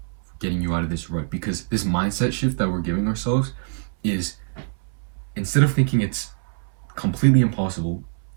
for getting you out of this rut, because this mindset shift that we're giving ourselves is, instead of thinking it's completely impossible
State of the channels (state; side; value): silent; left; 63 dB below the other